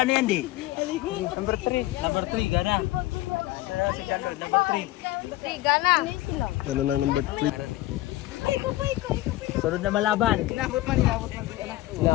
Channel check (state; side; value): quieter; right; 17.2 dB